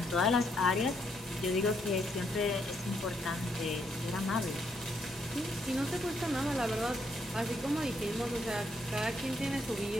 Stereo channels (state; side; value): normal; both; correlation 0.75